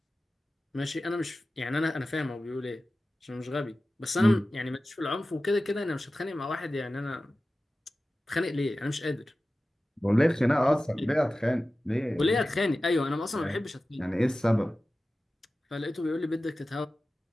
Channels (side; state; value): both; normal; correlation 0.95